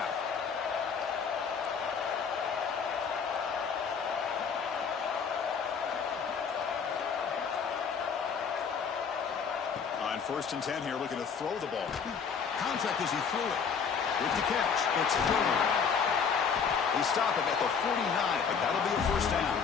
On 1st and 10 here, looking to throw the ball. Contact as he threw it. With the catch, it's Hill. They stop it at the 49, but that'll be a 1st down.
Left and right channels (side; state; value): right; quieter; 6.3 dB